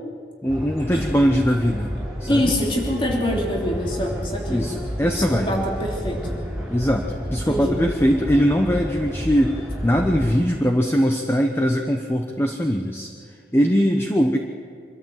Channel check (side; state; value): both; normal; correlation 0.87